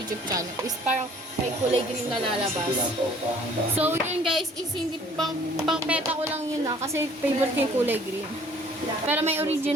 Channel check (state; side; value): normal; both; correlation 0.56